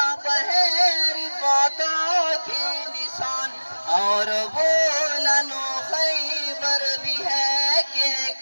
ہے رفاتوں کے نشان، اور بولن و خیبر بھی ہے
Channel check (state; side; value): inverted; both; correlation -1.00